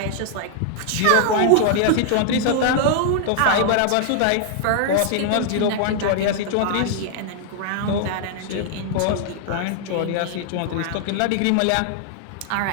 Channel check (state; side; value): different; both; correlation -0.01